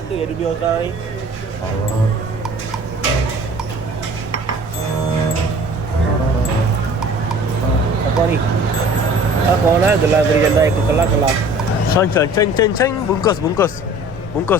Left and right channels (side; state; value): right; noise; rumble, 17 dB below the sound